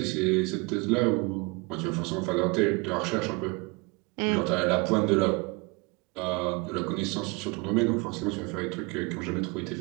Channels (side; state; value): left; quieter; 27.2 dB